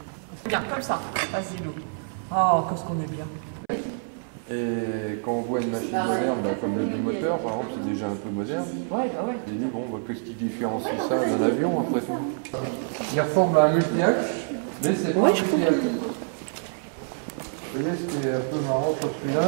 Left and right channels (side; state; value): left; silent; 61 dB below the other